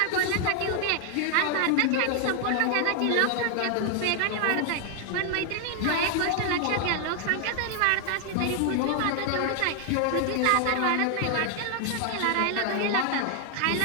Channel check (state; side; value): different; both; correlation 0.00